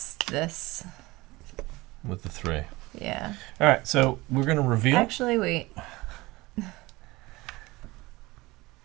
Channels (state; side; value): quieter; left; 21.2 dB